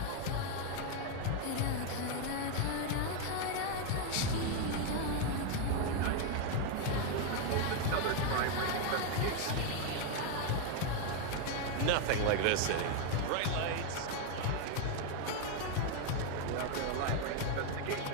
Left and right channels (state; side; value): different; both; correlation 0.01